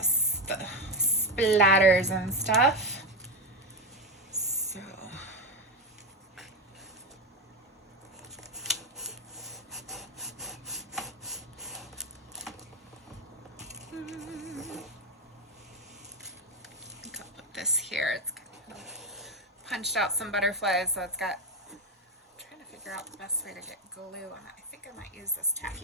the splatters and stuff. So this here, it's punched out some butterflies, so it's got, I'm trying to figure out the best way to get glue on it. I think I might use this tacky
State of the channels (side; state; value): both; normal; correlation 0.13